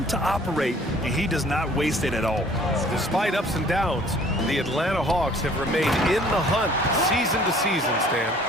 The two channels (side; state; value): both; normal; correlation 0.54